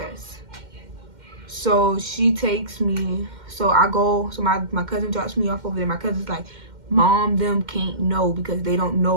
So she takes me, so I go, so my cousin drops me off over there. My cousin's like, Mom, them can't know because they don't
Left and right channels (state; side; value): late; left; 2.1 ms